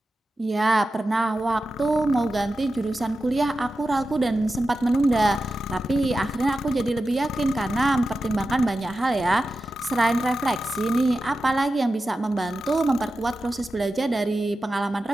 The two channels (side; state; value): both; normal; correlation 0.92